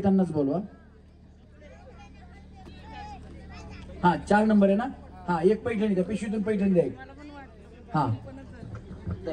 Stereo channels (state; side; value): identical; both; correlation 1.00